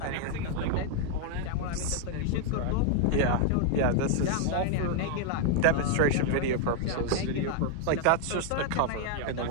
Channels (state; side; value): different; both; correlation 0.00